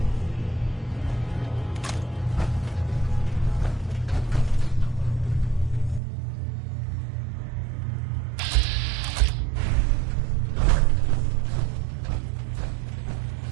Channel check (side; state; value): left; drops out; at 6.0 s